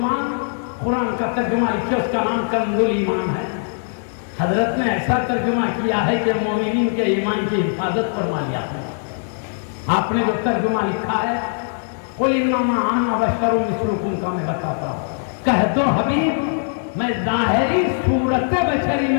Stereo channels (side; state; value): right; silent; digital silence